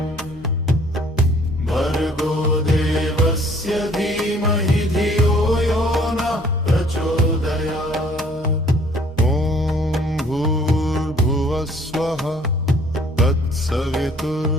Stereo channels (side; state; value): both; normal; correlation 0.58